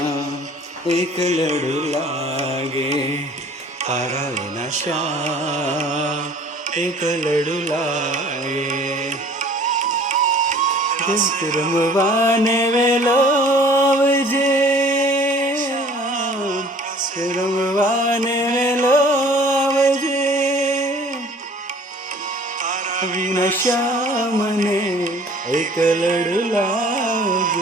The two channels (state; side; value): normal; both; correlation 0.51